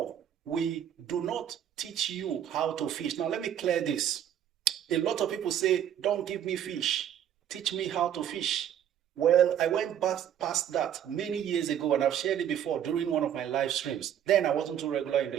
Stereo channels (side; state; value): left; quieter; 9.9 dB